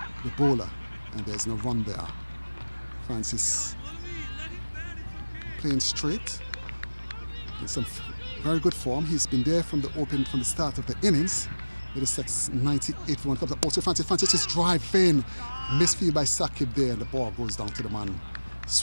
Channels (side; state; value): both; inverted; correlation -1.00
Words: bowler, and there's no run there. Francis playing straight in some very good form. He's been there from the start of the innings. Middlesex 98 for 1 comes up also Francis is driving, misfield by Sakib there, and the ball goes down to the man